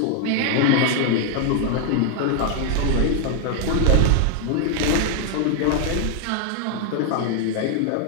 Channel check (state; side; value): different; both; correlation 0.00